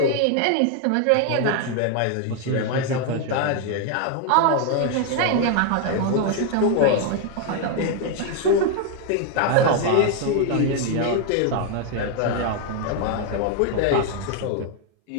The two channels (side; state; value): both; different; correlation 0.01